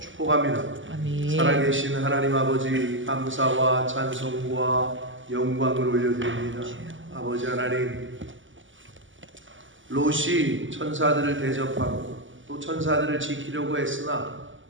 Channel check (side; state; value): left; late; 0.56 ms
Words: 축복합니다. 아멘. 살아계신 하나님 아버지, 감사와 찬송과 영광을 올려드립니다. 아버지 하나님, 롯이 천사들을 대접하고 또 천사들을 지키려고 했으나